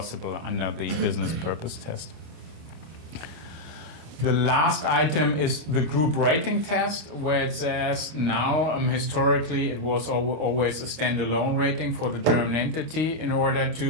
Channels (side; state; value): left; late; 26 ms